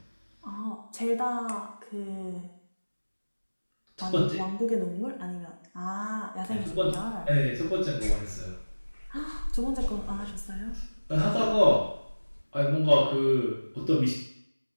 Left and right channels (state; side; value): inverted; both; correlation -1.00